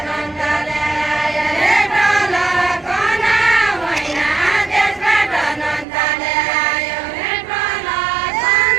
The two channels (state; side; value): drops out; left; at 5.9 s